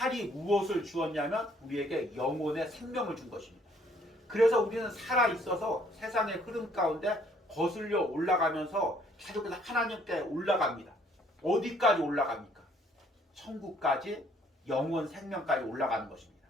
무엇을 주었냐면 우리에게 영혼의 생명을 준 것입니다. 그래서 우리는 살아있어서 세상의 흐름 가운데 거슬려 올라가면서 계속해서 하나님께 올라갑니다. 어디까지 올라갑니까? 천국까지, 영원 생명까지 올라가는 것입니다.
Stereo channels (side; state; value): both; normal; correlation 0.63